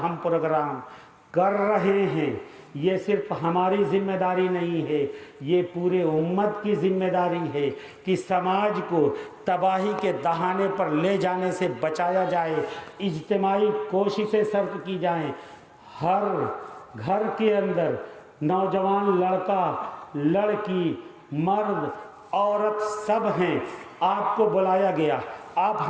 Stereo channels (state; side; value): identical; both; correlation 1.00